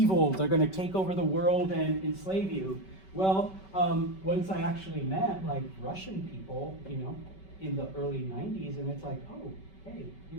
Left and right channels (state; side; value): late; right; 5.2 ms